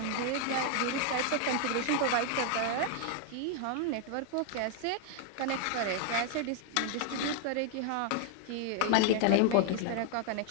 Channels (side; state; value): both; different; correlation 0.00